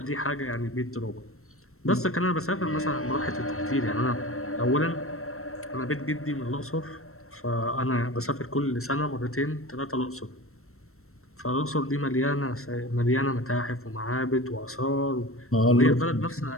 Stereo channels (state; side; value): late; right; 0.63 ms